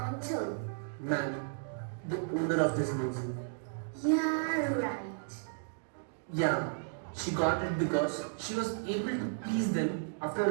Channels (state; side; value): silent; left; digital silence